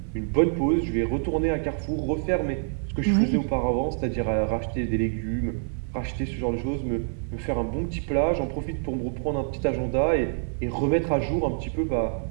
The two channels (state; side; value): silent; left; digital silence